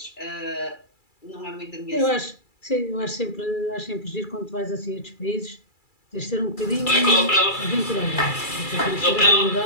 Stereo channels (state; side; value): late; right; 2.3 ms